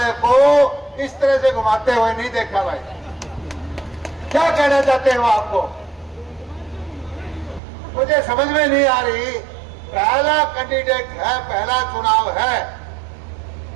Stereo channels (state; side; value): drops out; left; at 7.6 s